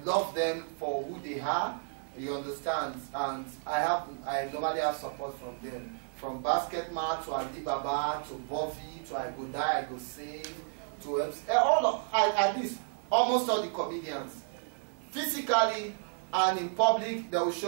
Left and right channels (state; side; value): silent; left; digital silence